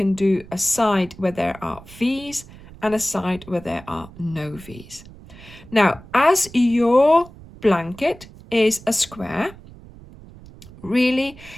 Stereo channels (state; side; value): noise; right; rumble, 19 dB below the sound